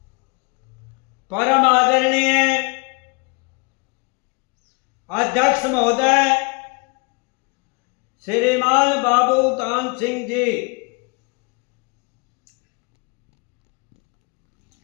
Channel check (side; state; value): right; quieter; 31.0 dB